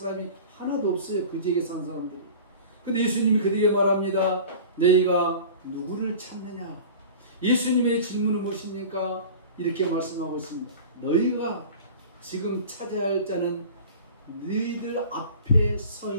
하나도 없어요. 그 지역에 사는 사람들이. 근데 예수님이 그들에게 말합니다. 너희가 누구를 찾느냐? 예수님의 질문은 무엇입니까? 이렇게 말씀하고 있습니다. 너희가 지금 찾아야 할 자는 너희들 앞에 서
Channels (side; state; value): both; inverted; correlation -0.39